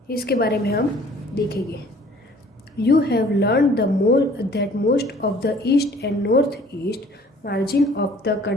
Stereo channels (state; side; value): normal; both; correlation 0.54